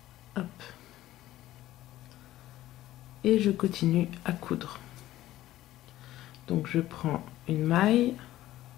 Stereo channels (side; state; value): right; quieter; 14.8 dB